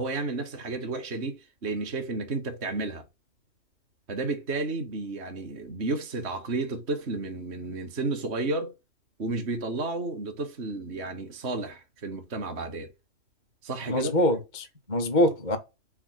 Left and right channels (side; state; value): left; late; 3.1 ms